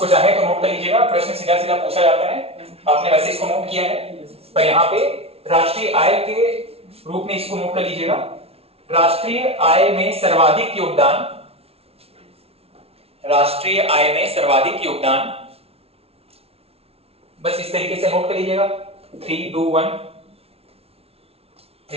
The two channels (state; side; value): late; left; 0.29 ms